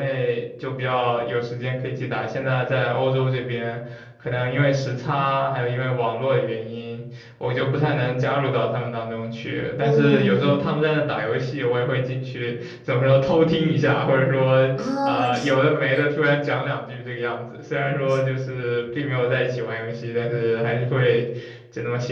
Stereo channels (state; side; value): identical; both; correlation 1.00